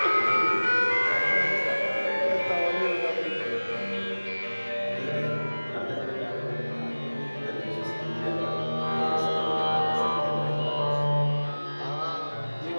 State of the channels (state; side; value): inverted; both; correlation -1.00